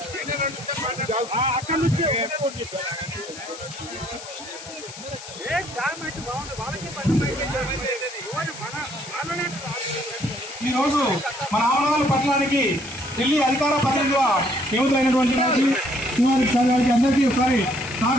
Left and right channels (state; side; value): noise; left; hiss, 14 dB below the sound